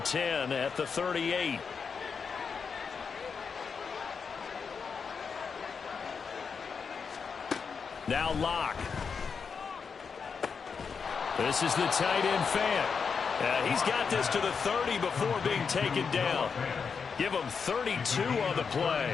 10 at the 38. Now Locke. This is the tight end Fant. He's got this to the 30 before being taken down. Give him 32 on the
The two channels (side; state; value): right; quieter; 5.8 dB